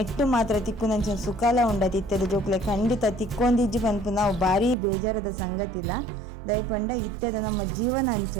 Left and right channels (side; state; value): left; drops out; at 4.8 s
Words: ಮಾತ್ರ ತಿಕ್ಕುನಂಚಿನ ಸುಖಲ ಉಂಡ ತಿತ್ತದ ಜೋಕ್ಲೆ ಖಂಡಿತ ತಿಕ್ಕೊಂದಿಜ್ಜಿ ಪನ್ಪು ನಾವು ಭಾರಿ ಬೇಜಾರದ ಸಂಗತಿಲ್ಲ ದಯಪಂಡ ಇತ್ತದ ನಮ್ಮ ಜೀವನ ಅಂಚ